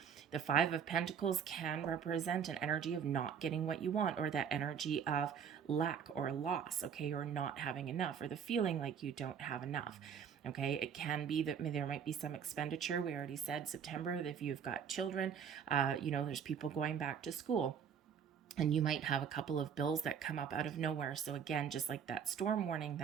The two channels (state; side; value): quieter; left; 7.5 dB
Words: The Five of Pentacles can represent an energy of not getting what you want, or that energy of lack or loss, okay, or not having enough, or the feeling like you don't have enough. Okay, it can be that there might be some expenditure. We already said September, if you've got children, there's people going back to school. And you might have a couple of bills that come up out of nowhere. So again, just like that storm warning